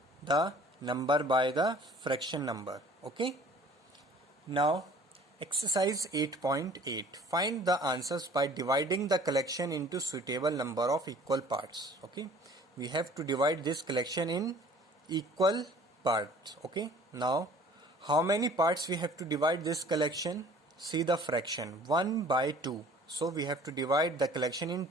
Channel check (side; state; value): both; normal; correlation 0.51